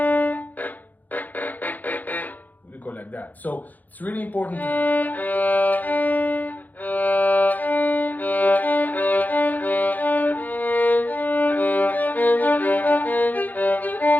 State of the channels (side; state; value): right; late; 0.082 ms